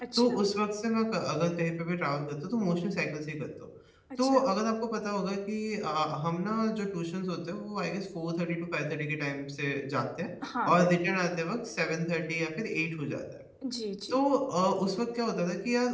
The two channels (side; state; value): both; identical; correlation 1.00